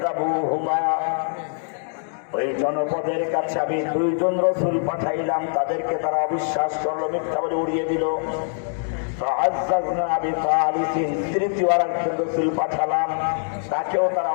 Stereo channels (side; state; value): right; silent; 63 dB below the other